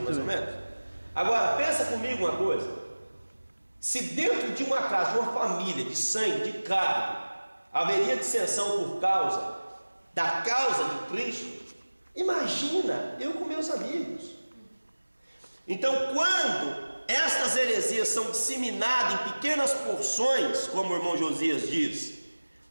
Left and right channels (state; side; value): inverted; both; correlation -1.00